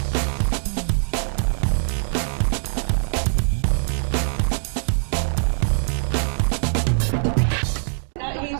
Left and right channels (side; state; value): left; silent; digital silence